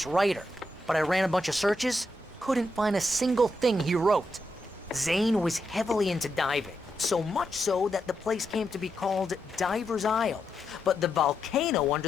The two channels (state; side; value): normal; both; correlation 0.83